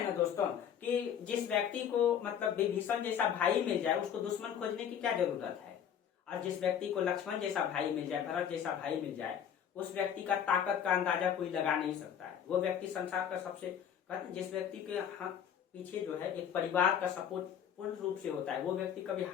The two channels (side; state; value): right; quieter; 8.7 dB